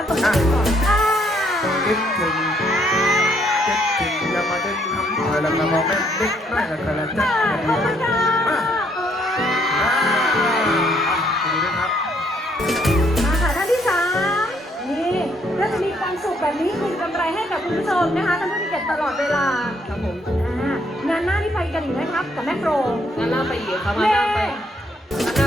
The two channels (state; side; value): normal; both; correlation 0.69